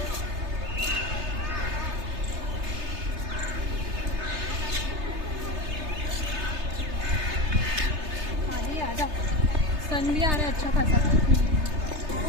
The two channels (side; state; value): left; late; 3.3 ms